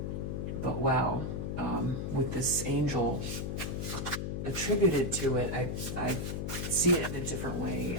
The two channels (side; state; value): left; noise; hum, 3 dB below the sound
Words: But wow, with this angel attributed to it, I see it in a different way.